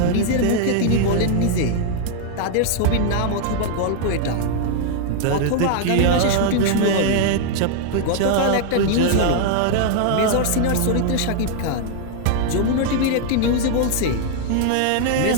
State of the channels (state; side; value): different; both; correlation 0.00